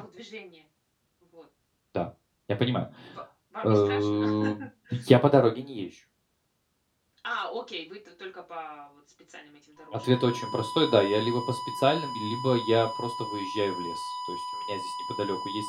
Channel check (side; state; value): both; identical; correlation 1.00